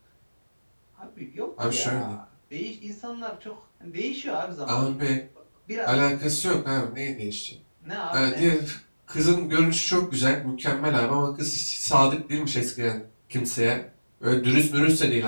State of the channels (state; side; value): inverted; both; correlation -1.00